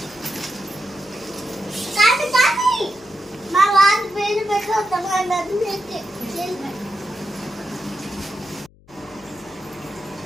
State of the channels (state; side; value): noise; left; hum, 27 dB below the sound